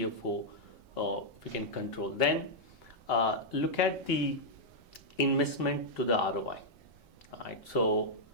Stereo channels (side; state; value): left; late; 4.5 ms